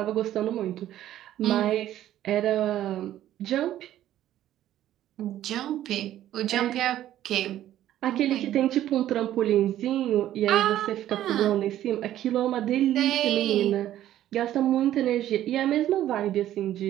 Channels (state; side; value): quieter; left; 12.6 dB